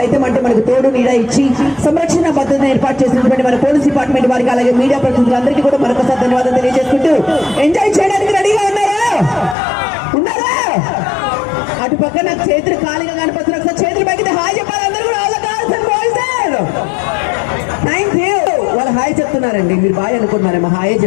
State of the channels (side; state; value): right; drops out; at 9.6 s